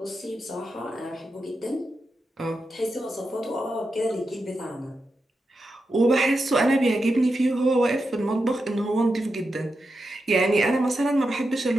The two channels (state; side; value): normal; both; correlation 0.88